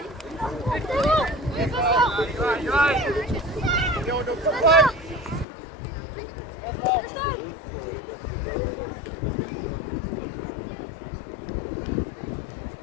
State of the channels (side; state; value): right; drops out; at 5.5 s